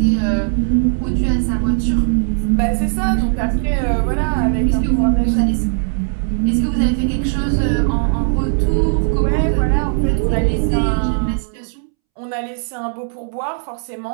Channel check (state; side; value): silent; left; 68 dB below the other